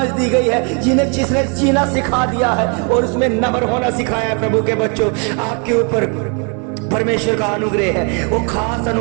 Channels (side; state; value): left; quieter; 37.1 dB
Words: दी गई है, जिसने जीना सिखा दिया है और उसमें नम्र होना सिखाया है। प्रभु के बच्चों, आपके ऊपर परमेश्वर का अनुग्रह है, वो खास